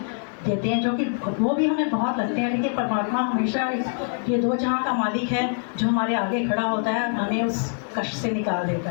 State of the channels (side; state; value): right; silent; 62 dB below the other